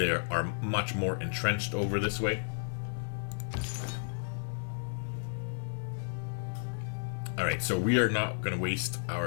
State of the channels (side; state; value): right; silent; digital silence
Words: are much more entrenched over this way. Alright, so we are not going to waste